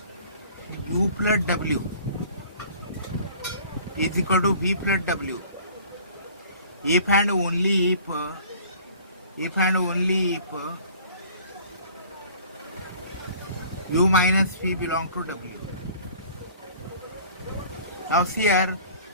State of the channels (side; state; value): both; inverted; correlation -0.49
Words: u plus w is equal to v plus w if and only if u minus v belong to w. Now see here,